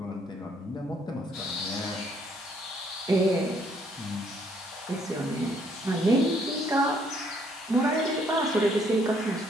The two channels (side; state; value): both; normal; correlation 0.67